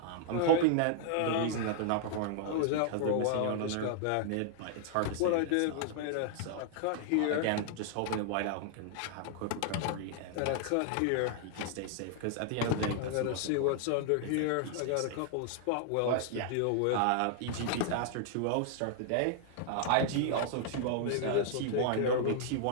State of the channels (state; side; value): different; both; correlation 0.00